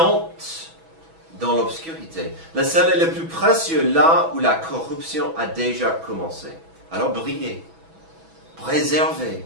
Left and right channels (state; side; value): late; left; 6.1 ms